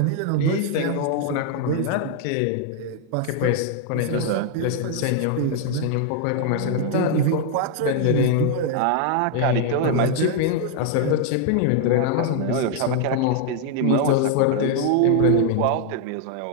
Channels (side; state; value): both; different; correlation 0.00